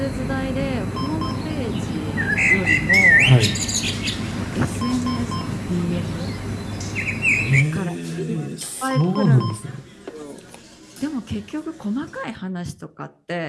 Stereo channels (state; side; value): identical; both; correlation 1.00